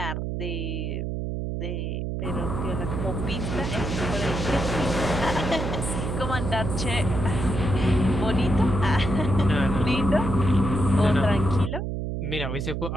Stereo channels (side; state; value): right; noise; hum, 3 dB below the sound